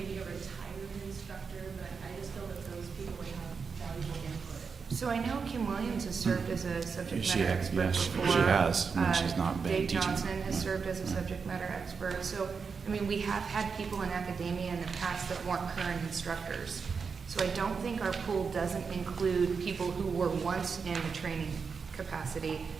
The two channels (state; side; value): quieter; left; 5.5 dB